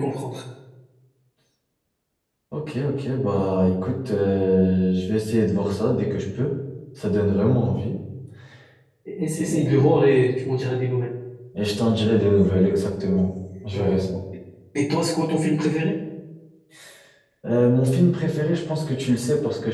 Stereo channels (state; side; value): identical; both; correlation 1.00